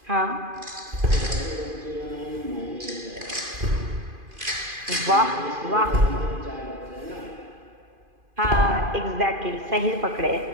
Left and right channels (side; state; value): left; late; 2.5 ms